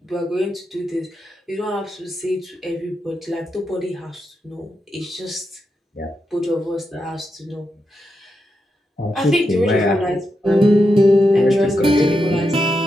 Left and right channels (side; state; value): both; normal; correlation 0.86